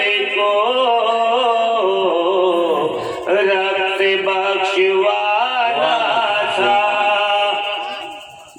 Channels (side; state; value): both; identical; correlation 1.00